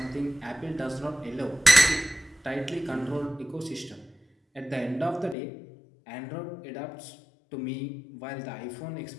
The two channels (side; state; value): right; drops out; at 5.4 s